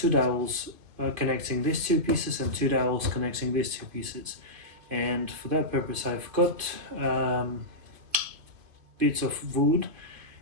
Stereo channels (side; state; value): left; late; 2.5 ms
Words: dowels connecting these two pieces and two dowels connecting these two pieces. And for that purpose I've got bits of wood,